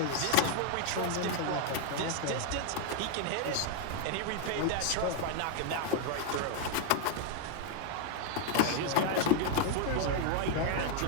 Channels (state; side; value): different; both; correlation 0.00